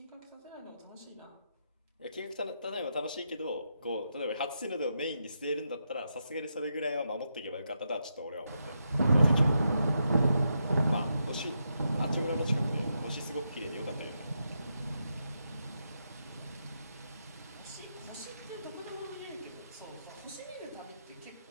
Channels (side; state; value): both; inverted; correlation -0.84